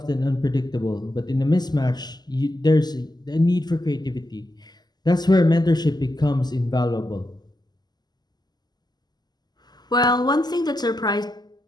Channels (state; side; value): late; right; 0.20 ms